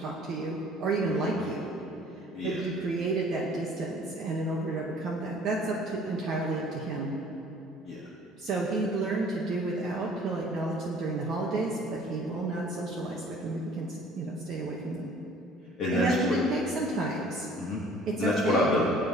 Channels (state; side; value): normal; both; correlation 0.53